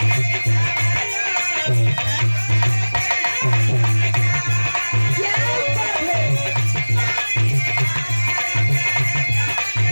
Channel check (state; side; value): inverted; both; correlation -1.00